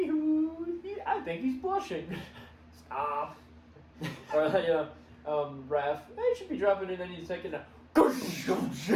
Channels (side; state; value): both; identical; correlation 1.00